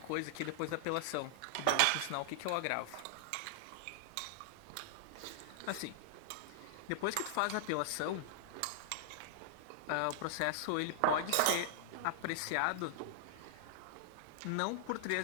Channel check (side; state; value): both; different; correlation -0.01